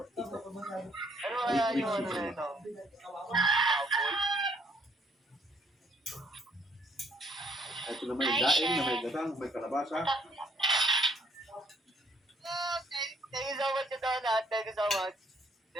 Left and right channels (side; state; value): both; normal; correlation 0.66